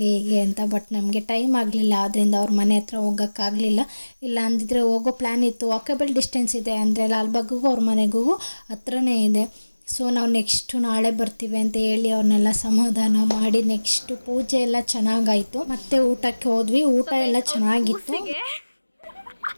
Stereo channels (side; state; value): both; inverted; correlation -1.00